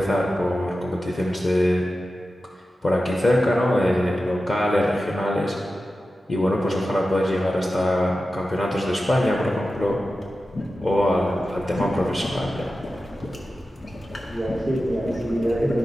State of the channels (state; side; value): normal; both; correlation 0.93